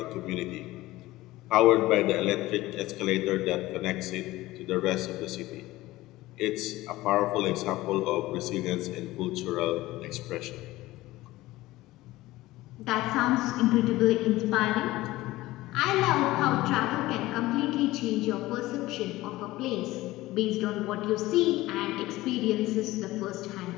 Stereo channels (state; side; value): quieter; right; 17.9 dB